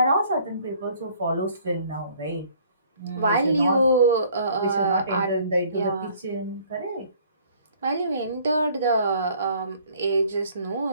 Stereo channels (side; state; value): both; inverted; correlation -0.58